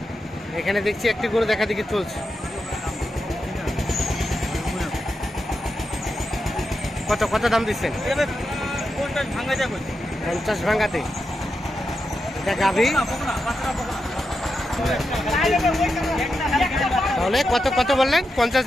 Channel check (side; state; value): both; normal; correlation 0.87